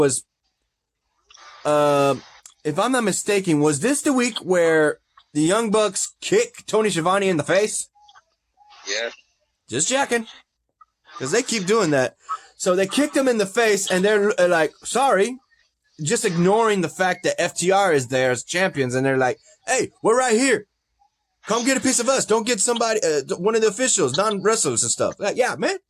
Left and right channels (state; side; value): identical; both; correlation 1.00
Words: if I'm not mistaken, was this the week where the Young Bucks kick Tony Schiavone in the face? Yeah. Just checking. Because they keep doing that. So they kicked him in the face, and they're like, sorry. Just ignoring the fact that FTR is there as champions, and they're like, hey, we're right here. Come get a piece of us. Don't get somebody, one of the officials, non-wrestlers and stuff. Like, yeah, man.